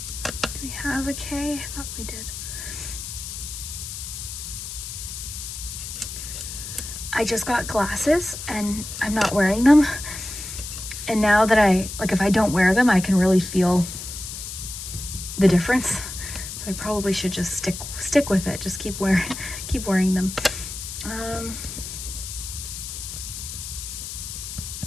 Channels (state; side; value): noise; left; hiss, 8 dB below the sound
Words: Do we have a K? I thought we did. I just got glasses and I'm not wearing them. And now that if I don't wear them, I can really feel the difference. So I probably should just stick with it. Just keep wearing them.